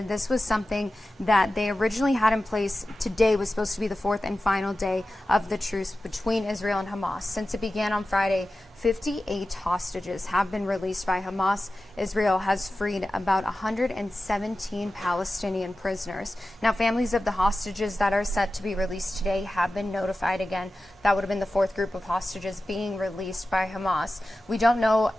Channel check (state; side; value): normal; both; correlation 0.94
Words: This was something that they originally had in place. Today was supposed to be the fourth and final day of the truce between Israel and Hamas. Since it began on Friday, 58 hostages have been released by Hamas. Israel has freed about 117 Palestinian prisoners. Now, families of the hostages that are set to be released today have been notified again. That would have been the fourth group of hostages being released by Hamas. We don't know